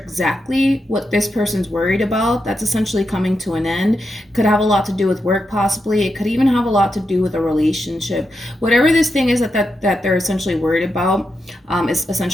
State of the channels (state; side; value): normal; both; correlation 0.86